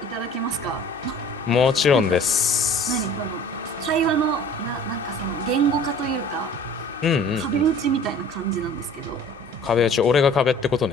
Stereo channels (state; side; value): normal; both; correlation 0.48